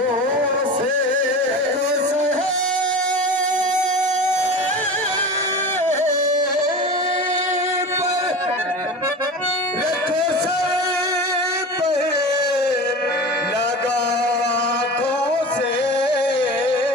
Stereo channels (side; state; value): both; normal; correlation 0.32